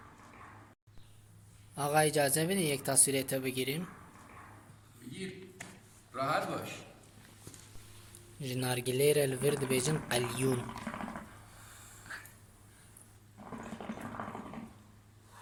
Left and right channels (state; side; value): identical; both; correlation 1.00